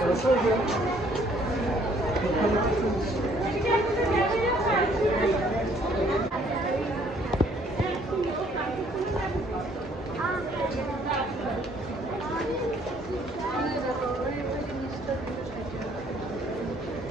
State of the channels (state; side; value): normal; both; correlation 0.62